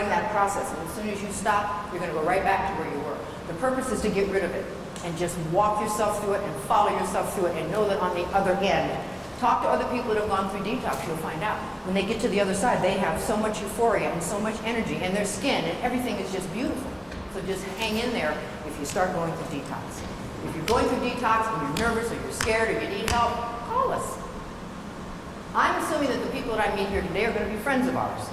that process, and as soon as you stop, you're going to go right back to where you were. The purpose is to get rid of it, and just walk yourself through it and follow yourself through it, and know that on the other end, talk to other people that have gone through detox, you'll find out. When they get to the other side, they have so much euphoria and so much energy, and their skin, and everything is just beautiful. So just hang in there if you start going through detox. If you're going through detox and you're nervous or you're scared or you need help, call us. I'm assuming that the people that I meet here today are going to be friends of ours,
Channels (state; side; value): identical; both; correlation 1.00